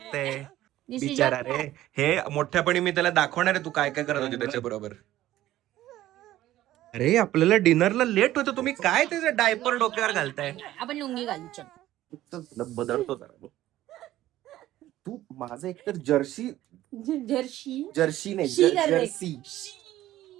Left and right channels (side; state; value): left; quieter; 14.4 dB